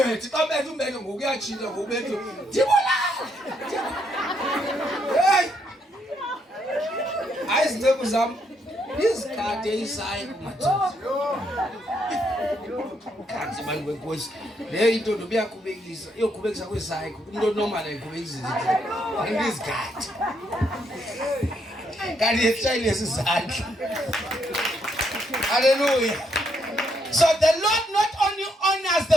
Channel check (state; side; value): normal; both; correlation 0.75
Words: xa bethu umbetho ngokuyajika ngobetho ndibulala. Hey, ayizinceko zam izikade isayi kumadoda kanti bantu wenkosi le into nobuyaqhubekisa iyoqhubekisa kwesayi umuntu onormal ayiqhubekisa izikade kanti yeshayile isizandla. Hallelujah. So the Lord not only honors